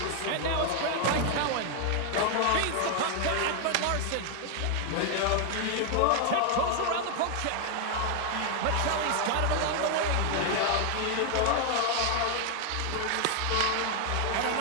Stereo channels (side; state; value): both; different; correlation 0.00